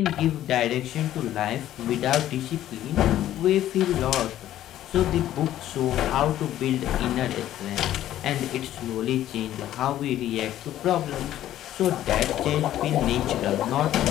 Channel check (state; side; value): quieter; right; 12.7 dB